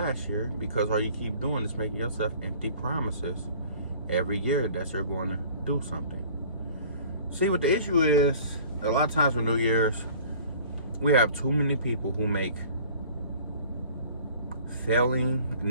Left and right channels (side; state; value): both; inverted; correlation -0.49